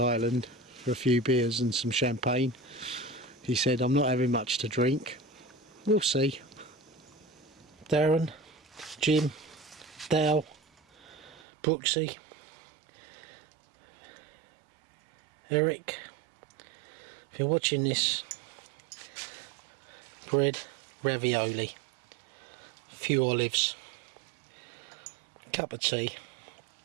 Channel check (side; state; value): left; drops out; at 11.4 s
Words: for a few beers and some champagne. He said, I'm not having much to drink. We'll see. Darren, Jim, Dale, Brooksy, Eric. If you're watching this, bread, ravioli, a few olives, cup of tea,